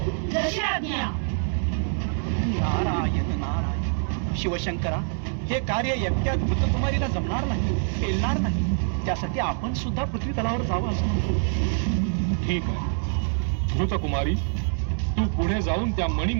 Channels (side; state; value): left; silent; 61 dB below the other